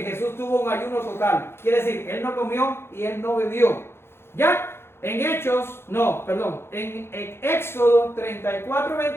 Jesús tuvo un ayuno total. Quiere decir, él no comió y él no bebió. Ya, en Éxodo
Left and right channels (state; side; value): late; right; 0.12 ms